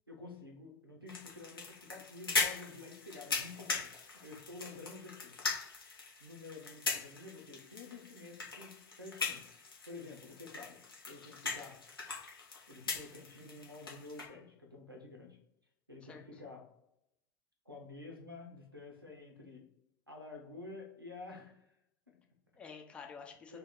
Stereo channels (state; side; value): quieter; right; 3.8 dB